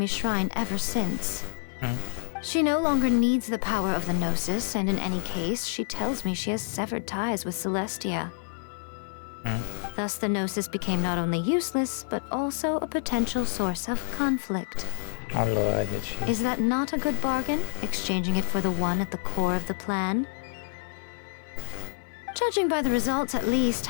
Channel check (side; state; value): right; silent; 56 dB below the other